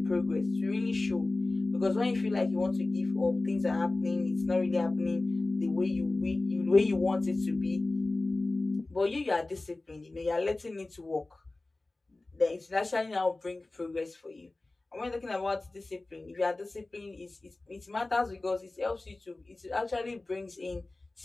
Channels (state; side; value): quieter; right; 3.0 dB